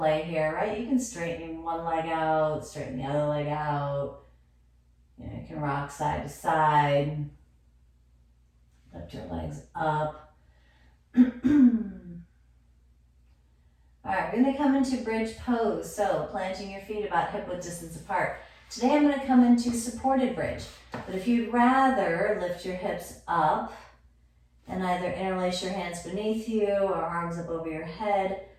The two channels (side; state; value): both; identical; correlation 1.00